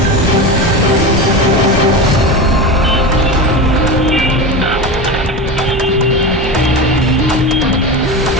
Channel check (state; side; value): normal; both; correlation 0.24